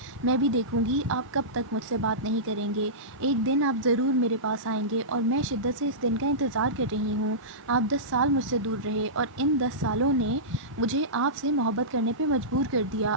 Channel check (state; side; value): normal; both; correlation -0.18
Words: میں بھی دیکھوں گی آپ کب تک مجھ سے بات نہیں کریں گے۔ ایک دن آپ ضرور میرے پاس آئیں گے اور میں شدت سے اس دن کا انتظار کر رہی ہوں۔ آپ 10 سال مجھ سے دور رہے اور ان 10 سالوں نے مجھے آپ سے محبت کرنے پہ مجبور کر دیا۔